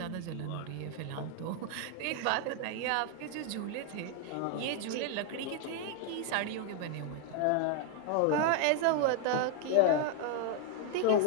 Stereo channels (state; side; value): different; both; correlation 0.00